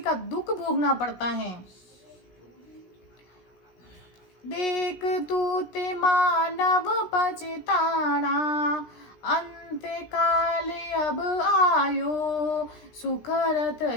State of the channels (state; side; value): late; right; 16 ms